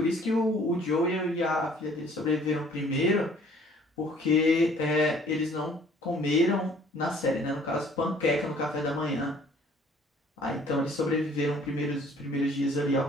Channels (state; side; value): normal; both; correlation 0.56